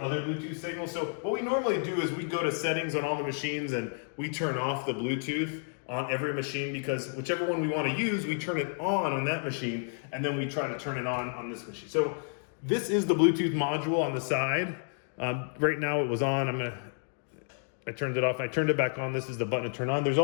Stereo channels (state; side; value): silent; right; 57 dB below the other